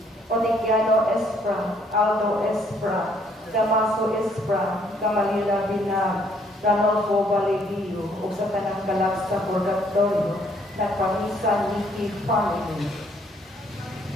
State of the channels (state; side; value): normal; both; correlation 0.66